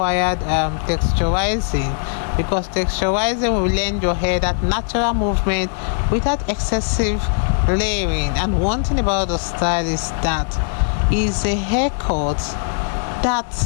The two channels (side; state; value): right; silent; 66 dB below the other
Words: texturizing, because texturizing will lend your hair that natural movement without excessive layering. And one thing about the style is that it's a haircut that